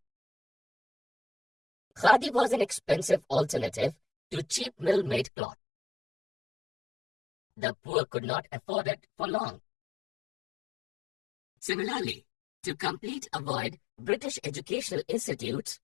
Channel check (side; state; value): right; drops out; at 5.3 s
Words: Khadi was an expensive alternative to cheap mill-made cloth. The poor could not afford it for long. Similarly, to complete a void British educational institutes,